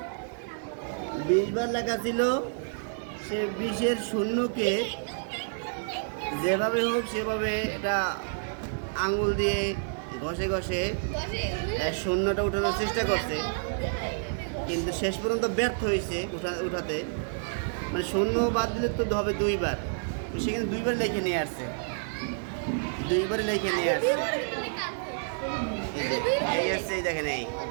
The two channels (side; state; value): left; silent; digital silence